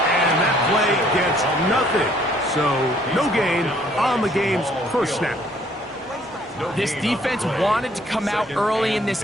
that play gets nothing. So no gain on the game's first snap. This defense wanted to come out early in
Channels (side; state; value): both; normal; correlation 0.62